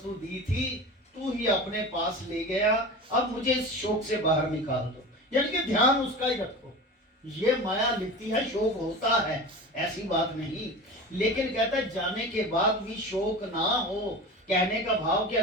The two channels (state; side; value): normal; both; correlation 0.31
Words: दी थी, तू ही अपने पास ले गया, अब मुझे इस शोक से बाहर निकाल दो। यानी कि ध्यान उसका ही रखो। ये माया लिखती है शोक होता है, ऐसी बात नहीं, लेकिन कहता है जाने के बाद भी शोक ना हो। कहने का भाव कि